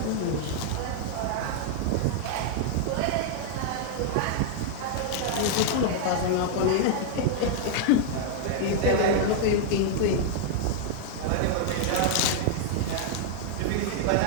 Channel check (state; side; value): different; both; correlation -0.01